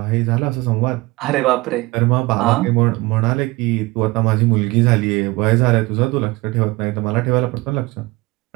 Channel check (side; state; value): left; quieter; 21.8 dB